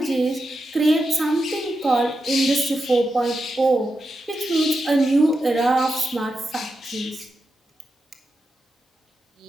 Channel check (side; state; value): both; normal; correlation 0.88